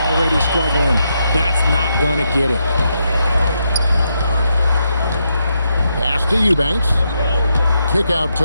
struggling. That's not gonna get it. Pass to Eubanks. Kick out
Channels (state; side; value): inverted; both; correlation -0.81